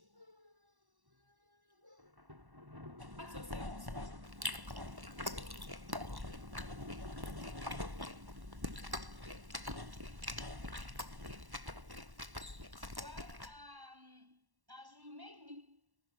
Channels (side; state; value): left; late; 1.1 ms